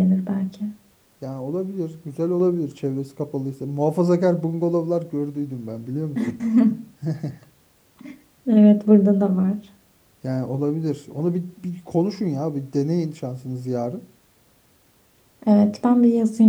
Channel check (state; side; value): identical; both; correlation 1.00